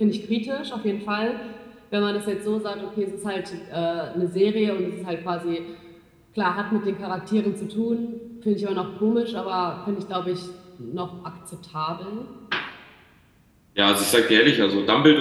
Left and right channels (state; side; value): identical; both; correlation 1.00